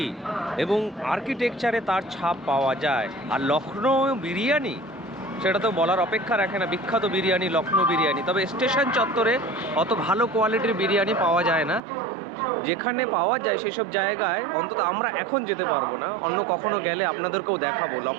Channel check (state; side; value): drops out; left; at 11.8 s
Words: এবং আর্কিটেকচারে তার ছাপ পাওয়া যায়। আর লখনৌ বিরিয়ানি, সেটা তো বলার অপেক্ষা রাখে না। বিখ্যাত বিরিয়ানি লখনৌ বিরিয়ানি। তবে স্টেশন চত্বরে অত ভালো কোয়ালিটির বিরিয়ানি পাওয়া যায় না। যেখানে পাওয়া যায় সেসব জায়গায় অন্তত আমরা এখন যেতে পারবো না, অন্য কখনো গেলে আপনাদেরকেও দেখাবো